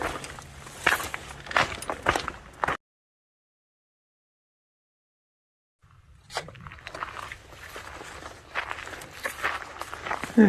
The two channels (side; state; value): both; identical; correlation 1.00